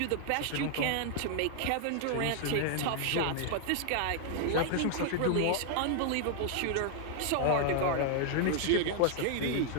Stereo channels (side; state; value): both; different; correlation 0.00